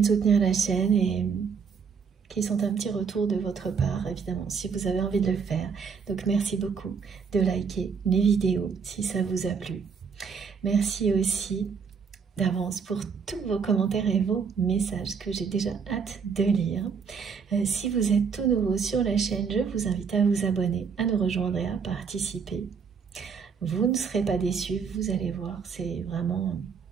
soutenir la chaîne et qui sont un petit retour de votre part, évidemment, si vous avez envie de le faire. Donc, merci beaucoup de liker les vidéos si ça vous a plu. Merci aussi d'avance pour tous vos commentaires et vos messages que j'ai déjà hâte de lire. Si vous êtes tout nouveau sur la chaîne, je vous invite à vous abonner, à nous rejoindre et à participer. Vous ne serez pas déçus, vous allez voir, c'est vraiment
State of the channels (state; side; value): quieter; left; 6.0 dB